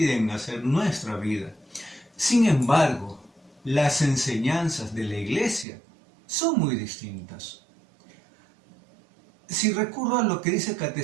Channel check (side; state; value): left; drops out; at 5.7 s